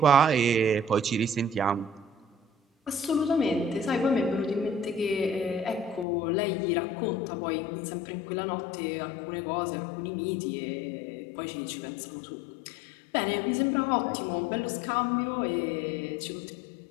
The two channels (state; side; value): drops out; right; at 6.1 s